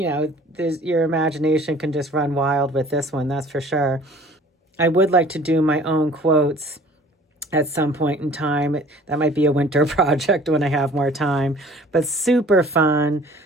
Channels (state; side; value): normal; both; correlation 0.50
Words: imagination can just run wild with this one, that's for sure. I would like to do my own quotes at some point in time. That might be a winter project when I have more time, but super fun,